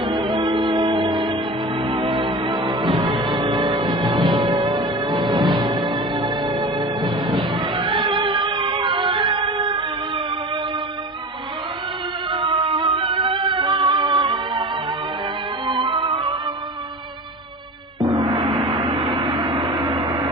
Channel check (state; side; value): normal; both; correlation 0.33